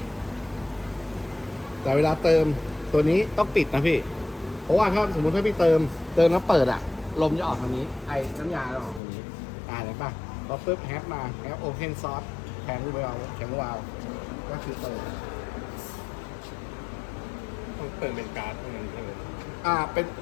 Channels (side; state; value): right; drops out; at 9.0 s